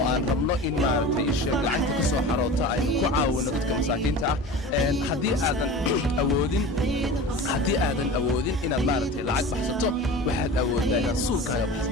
aan rabno in maaragtay sheeg lacagta ka soo xaroota aynu ku caawino dadka masaakiinta ah haddii aadan awoodin inaad maaragtay lacag baxsato waxaad awooddaa inaad suulkaaga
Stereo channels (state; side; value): normal; both; correlation 0.34